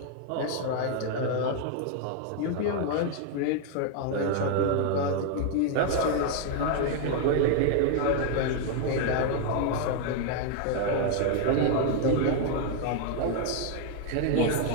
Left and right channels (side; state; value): both; different; correlation 0.00